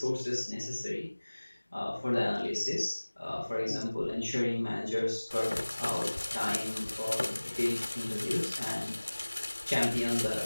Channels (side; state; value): both; inverted; correlation -1.00